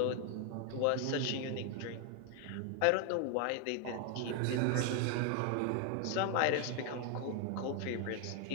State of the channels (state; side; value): different; both; correlation 0.01